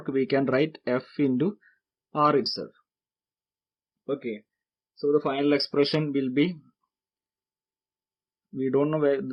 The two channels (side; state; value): both; identical; correlation 1.00